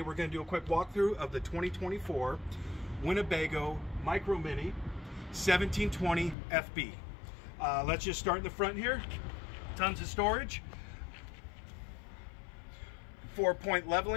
we're going to do a quick walkthrough of the 2024 Winnebago Micro Minnie 1720FB. Let's just start in the front here. Tons of storage. 4-point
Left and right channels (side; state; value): right; drops out; at 6.4 s